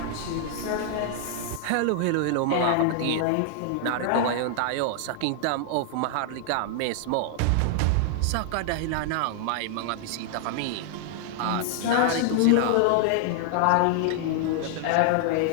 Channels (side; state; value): both; different; correlation 0.00